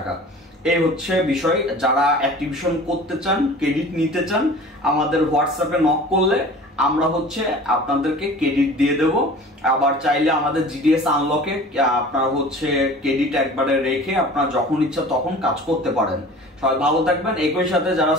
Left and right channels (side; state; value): both; normal; correlation 0.42